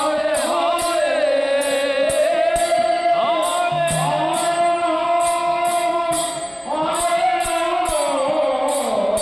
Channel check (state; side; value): identical; both; correlation 1.00